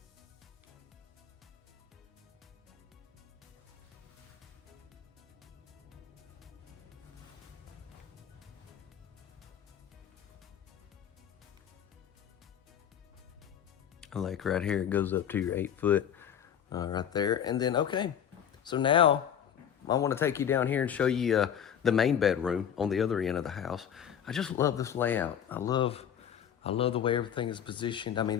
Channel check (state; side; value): quieter; right; 8.9 dB